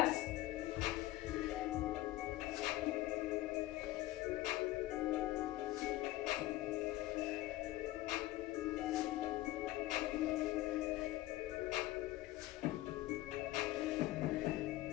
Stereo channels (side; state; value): right; quieter; 16.8 dB